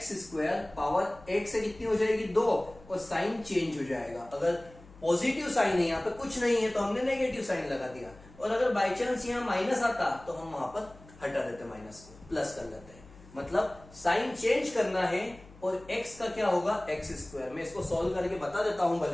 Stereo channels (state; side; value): noise; left; hum, 22 dB below the sound